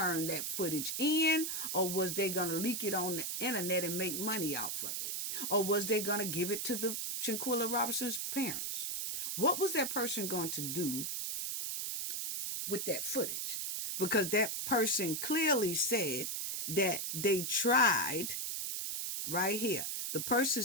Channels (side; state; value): right; noise; hiss, 2 dB below the sound